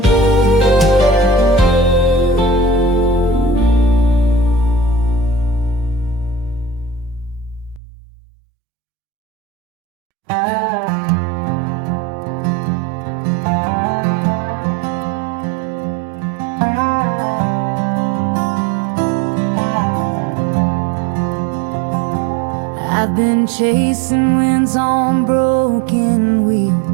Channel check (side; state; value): left; drops out; at 7.8 s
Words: I've been chasing winds on broken